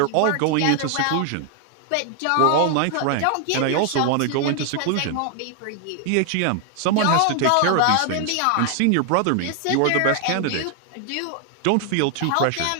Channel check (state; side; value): different; both; correlation 0.00